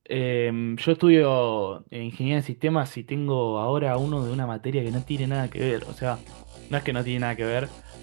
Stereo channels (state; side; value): silent; left; digital silence